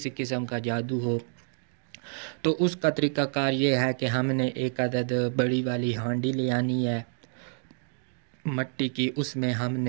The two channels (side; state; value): left; silent; digital silence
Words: قسم کا جادو ہو، تو اس کا طریقہ کار یہ ہے کہ ہم نے 1 عدد بڑی والی ہانڈی لے آنی ہے مٹی کی۔ اس میں ہم